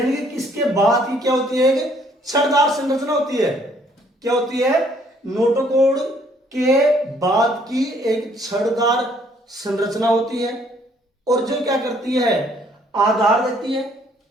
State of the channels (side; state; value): both; normal; correlation 0.64